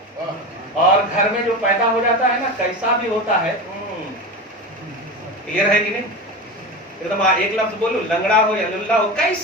اور گھر میں جو پیدا ہو جاتا ہے نا کیسا بھی ہوتا ہے، کلیئر ہے کہ نہیں؟ ایک دم ایک لفظ بولو، لنگڑا ہو یا للہ ہو،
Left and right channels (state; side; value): normal; both; correlation 0.25